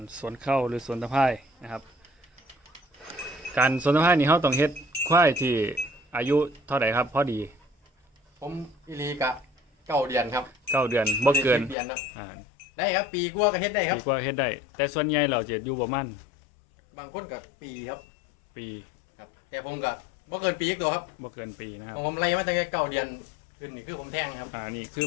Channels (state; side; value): drops out; right; at 11.8 s